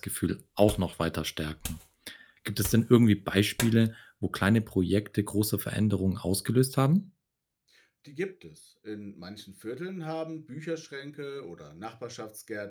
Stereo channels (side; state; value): both; identical; correlation 1.00